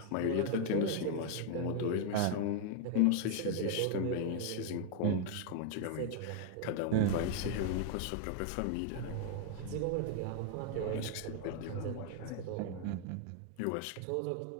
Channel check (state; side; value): different; both; correlation 0.00